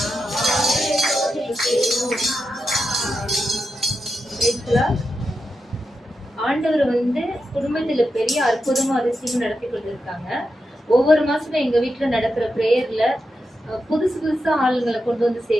ஆண்டவர் வந்து குடும்பத்துல பெரிய அற்புதமும் அதிசயமும் நடத்தி கொண்டிருக்காங்க. ஒவ்வொரு மாசமும் எங்க வீட்டுல நடக்கிற பிரேயர்ல புதுசு புதுசா ஆளுங்களை கொண்டு வந்து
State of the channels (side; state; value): both; normal; correlation 0.87